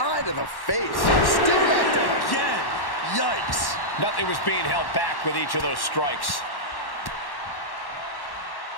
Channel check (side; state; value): right; late; 1.1 ms